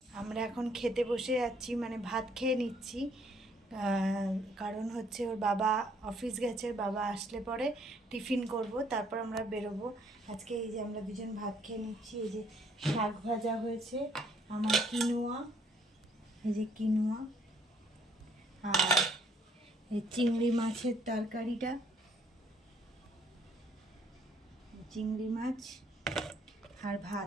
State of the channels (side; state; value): both; normal; correlation 0.66